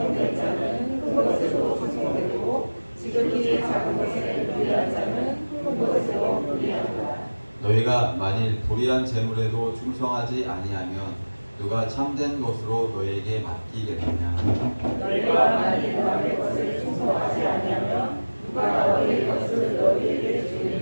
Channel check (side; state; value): both; inverted; correlation -1.00